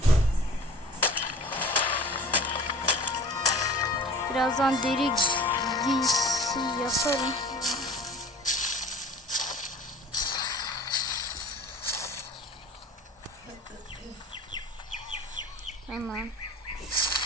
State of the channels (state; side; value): normal; both; correlation 0.43